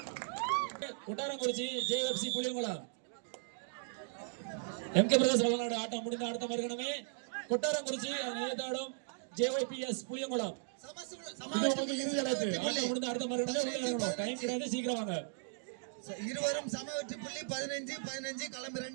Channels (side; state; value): left; silent; digital silence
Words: கொட்டாரங்குறிச்சி JFC Puliyankulam MK பிரதேச விளையாடு ஆட்டம் முடிந்த அடுத்த மறுகணமே கொட்டாரங்குறிச்சி நேதாடும் ஜேஒய்பிஎஸ் புளியங்குளம் இறுதி அழைப்பு. ஆட்டம் முடிந்த அடுத்த மறுகணமே உள்ள இறங்கணும். டைம் கிடையாது, சீக்கிரம் வாங்க. இருவரும் சம வெற்றி புள்ளி 15-15 களம்